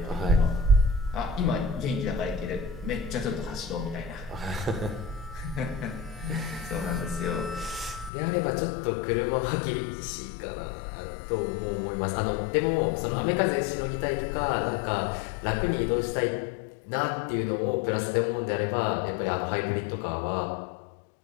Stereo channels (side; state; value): right; drops out; at 8.1 s